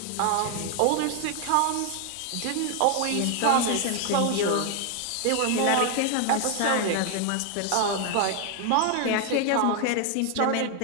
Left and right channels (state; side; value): different; both; correlation 0.00